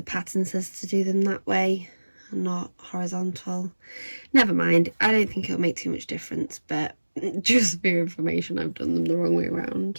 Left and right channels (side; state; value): both; inverted; correlation -1.00